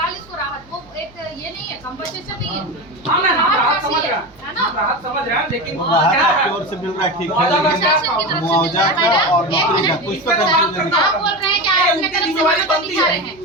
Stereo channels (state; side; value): noise; right; hum, 27 dB below the sound